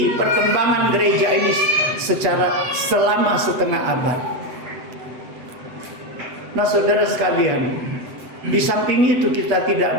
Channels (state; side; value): late; left; 8.0 ms